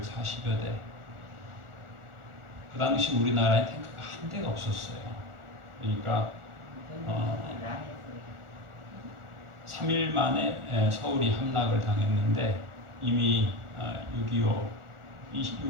대. 그 당시 우리나라에 탱크가 한 대가 없었어요. 그러니까 3일 만에 서울이 함락을 당했는데, 이미 6.25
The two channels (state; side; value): late; left; 1.4 ms